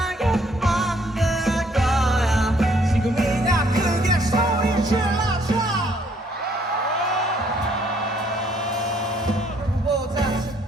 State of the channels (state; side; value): normal; both; correlation 0.65